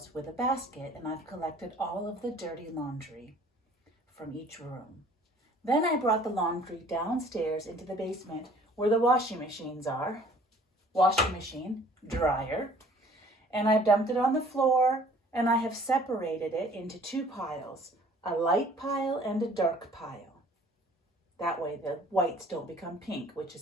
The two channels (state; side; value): normal; both; correlation 0.54